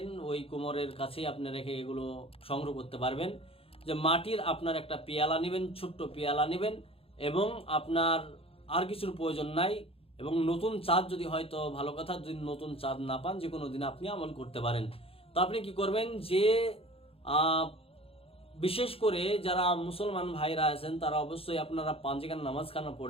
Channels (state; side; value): late; right; 0.27 ms